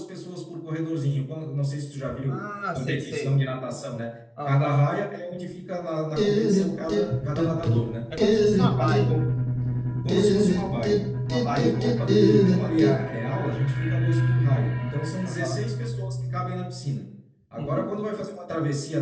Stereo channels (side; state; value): both; identical; correlation 1.00